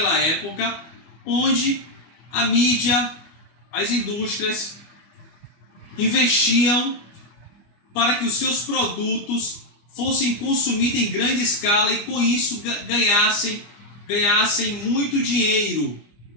época, onde a mídia, as indústrias investiam para que os seus produtos fossem consumidos em grande escala e com isso ganhassem muito dinheiro,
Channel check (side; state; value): right; late; 24 ms